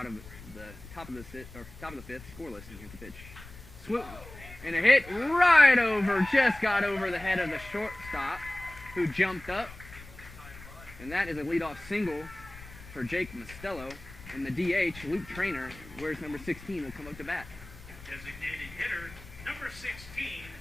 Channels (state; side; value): noise; left; rumble, 17 dB below the sound